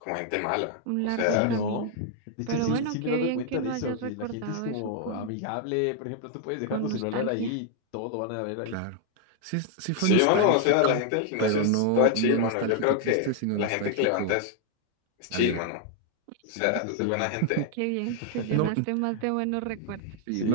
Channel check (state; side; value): different; both; correlation 0.00